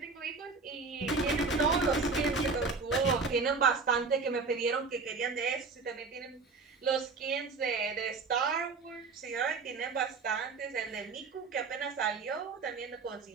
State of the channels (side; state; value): left; quieter; 4.4 dB